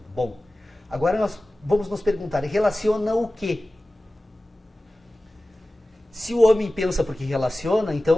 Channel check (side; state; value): both; normal; correlation 0.96